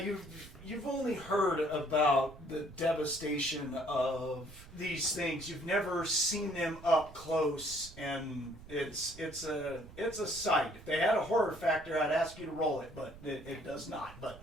only heard about the devastation of these things. You've never seen them up close, and it's a sight. If they had a horror factor, I'd ask you to roll it, but it does not. But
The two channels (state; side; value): noise; right; rumble, 18 dB below the sound